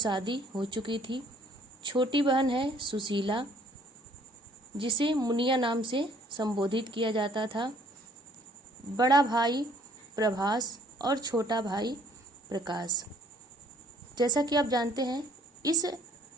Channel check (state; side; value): normal; both; correlation 0.60